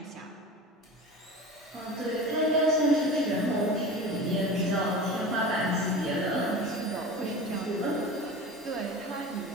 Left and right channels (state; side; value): normal; both; correlation 0.33